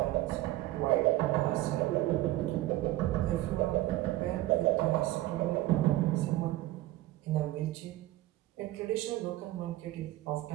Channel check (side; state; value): left; quieter; 16.2 dB